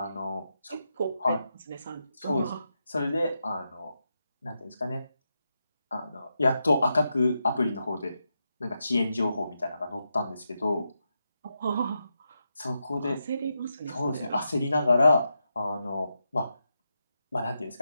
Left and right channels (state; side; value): inverted; both; correlation -0.86